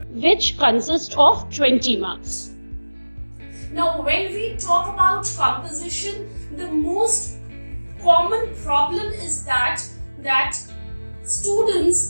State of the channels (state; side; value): inverted; both; correlation -1.00